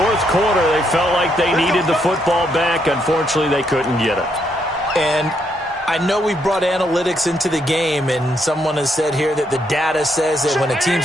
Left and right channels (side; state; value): both; normal; correlation 0.75